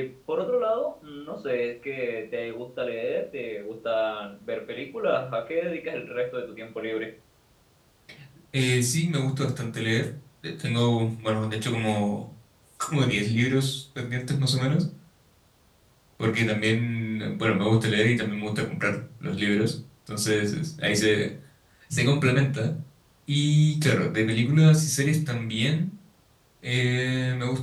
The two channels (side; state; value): both; identical; correlation 1.00